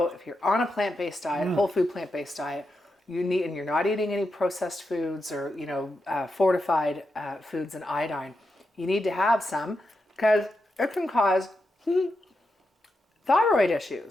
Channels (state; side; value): normal; both; correlation 0.87